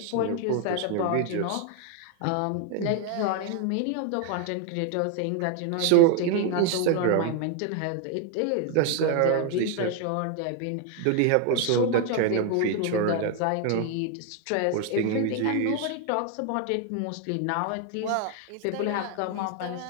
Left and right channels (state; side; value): different; both; correlation 0.00